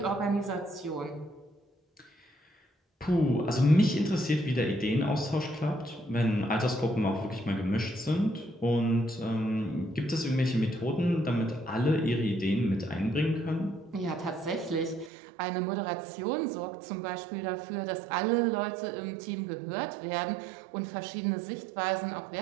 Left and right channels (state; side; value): drops out; left; at 15.1 s